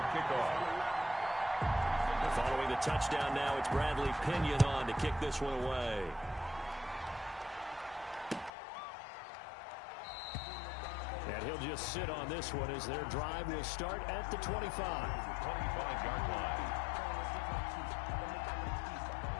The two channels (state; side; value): drops out; right; at 8.5 s